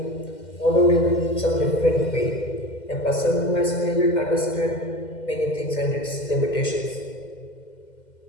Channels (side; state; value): right; late; 2.0 ms